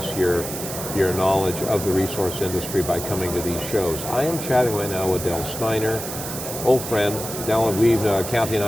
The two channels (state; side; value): noise; right; hiss, 8 dB below the sound